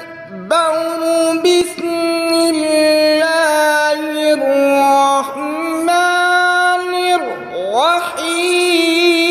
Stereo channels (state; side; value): identical; both; correlation 1.00